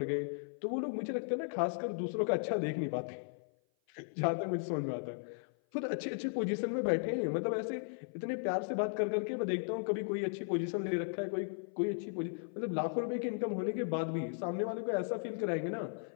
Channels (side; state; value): right; silent; 54 dB below the other